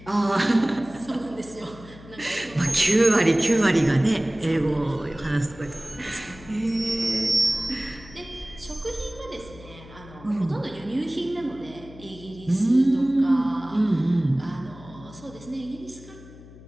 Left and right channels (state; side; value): noise; left; hum, 19 dB below the sound